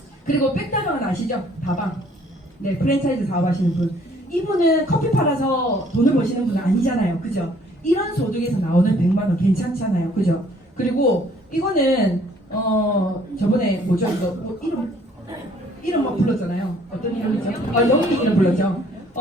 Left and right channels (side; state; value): both; normal; correlation 0.60